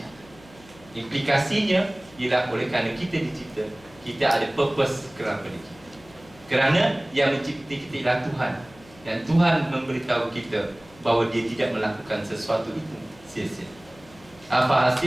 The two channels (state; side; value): noise; left; hum, 24 dB below the sound